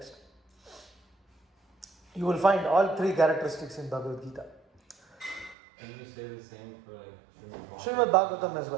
You will find all three characteristics in Bhagavad Gita. Can you say the same for like Srimad Bhagavatam as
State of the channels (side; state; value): left; drops out; at 5.6 s